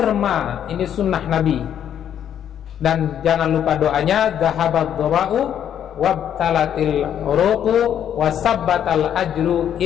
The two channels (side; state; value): right; quieter; 9.6 dB